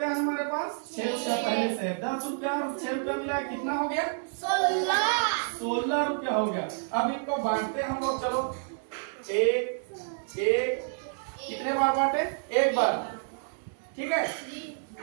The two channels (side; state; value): left; silent; digital silence